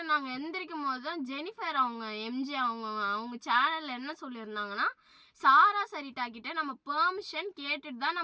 நாங்கள் எந்திரிக்கும் போது தான் ஜெனிஃபர் அவங்க எம்ஜி அவங்க சேனலில் என்ன சொல்லியிருந்தாங்கன்னா, சாரா சரிட்டா கிட்ட நம்ம பெர்மிஷன் கேட்டுட்டு தான்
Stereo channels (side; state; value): both; identical; correlation 1.00